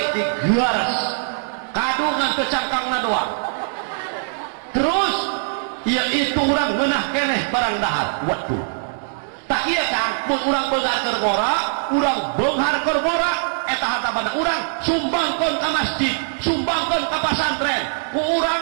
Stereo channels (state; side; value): silent; left; digital silence